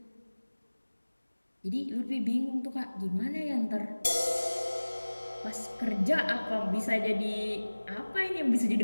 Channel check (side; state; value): both; inverted; correlation -1.00